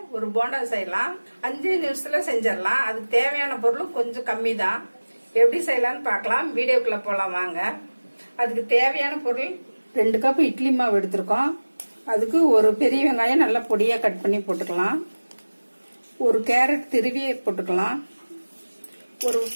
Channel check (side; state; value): both; inverted; correlation -1.00